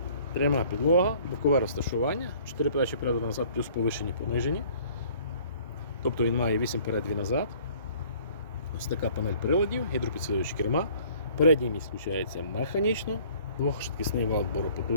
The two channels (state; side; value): inverted; both; correlation -0.54